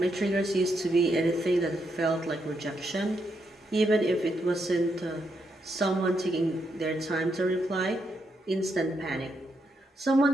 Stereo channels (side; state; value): both; normal; correlation 0.80